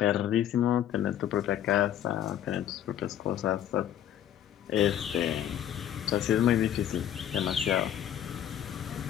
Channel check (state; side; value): quieter; right; 10.6 dB